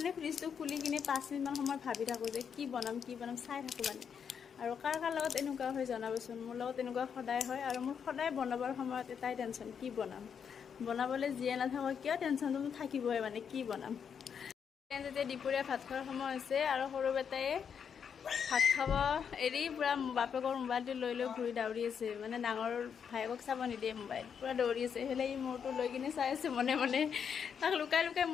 ফ্ৰিজটো খুলি কিনে 5 মিনিটমান সময় ভাবি থাকো যে কি বনাম চাই থাকো মানে আৰু কাৰ লগত এনেকুৱা হৈ জনাবচোন মোৰ লগত এনেকুৱা সদায় হয় আৰু মোৰ সদায় বনাবৰ সময়ত এটাই টেনচন কি বনাম বনাবলৈ জিয়ে নাথাকক কিয় টেনচনটো থাকিবই মানে কি বনাম যেতিয়া দুপৰীয়া ভাত খোৱাৰ সময় হৈছে আৰু সৰু বেটায়ে ভাত খাব এৰি পুৰা বাপেকৰ মোবাইলটো লৈ ঘূৰি দৌৰি আছে মানে ডাঙৰ ভাইকক চাব নিদিয়ে মোবাইল পুৰা দৌৰি আছে হেলে ই মোৰটো লৈ কিনে চাই আছে মনে মনে তাক লুকাই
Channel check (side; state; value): right; quieter; 7.2 dB